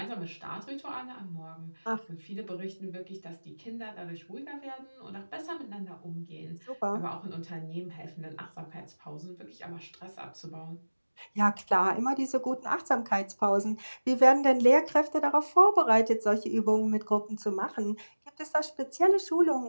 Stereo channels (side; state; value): both; inverted; correlation -1.00